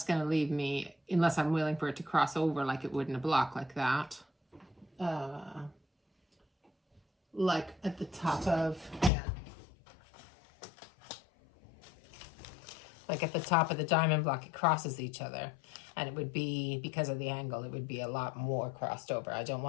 going to leave me, unless I'm willing for it to cross over like it would in a block like that, like at the top of, like at the top of the diamond block, it crosses each other. And it would be, because of the angle, it would be a lot more crossed over. I don't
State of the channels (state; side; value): drops out; right; at 9.1 s